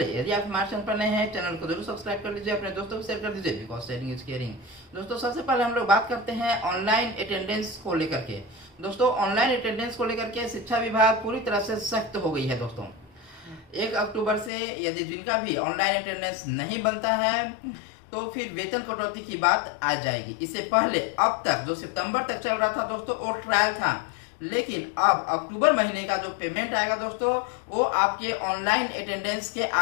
यदि आप हमारे चैनल पर नए हैं, चैनल को जरूर सब्सक्राइब कर लीजिए, अपने दोस्तों को शेयर कर दीजिए, बिकॉज शेयरिंग इज केयरिंग। दोस्तों सबसे पहले हम लोग बात करते हैं ऑनलाइन अटेंडेंस को लेकर के। दोस्तों ऑनलाइन अटेंडेंस को लेकर के शिक्षा विभाग पूरी तरह से सख्त हो गई है दोस्तों। 1 अक्टूबर से यदि जिनका भी ऑनलाइन अटेंडेंस नहीं बनता है तो फिर वेतन कटौती की बात आ जाएगी। इससे पहले अब तक जो सितंबर तक चल रहा था दोस्तों वो ट्रायल था, लेकिन अब अक्टूबर महीने का जो पेमेंट आएगा दोस्तों वो आपके ऑनलाइन अटेंडेंस के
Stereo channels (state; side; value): drops out; right; at 14.5 s